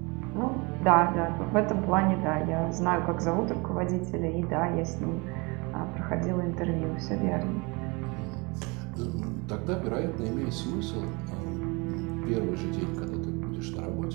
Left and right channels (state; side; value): quieter; left; 27.9 dB